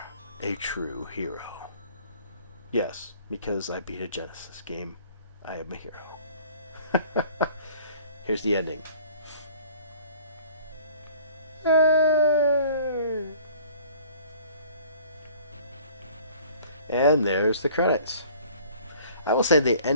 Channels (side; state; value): both; inverted; correlation -0.51